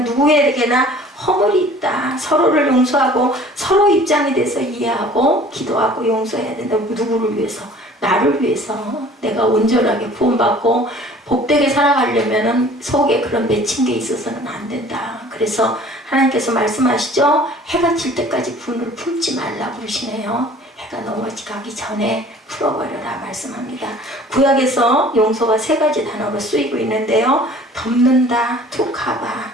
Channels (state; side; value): normal; both; correlation 0.49